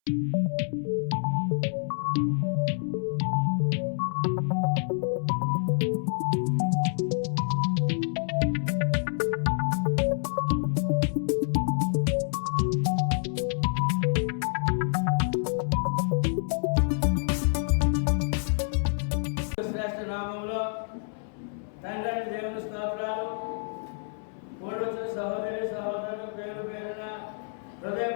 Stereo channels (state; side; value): silent; right; 59 dB below the other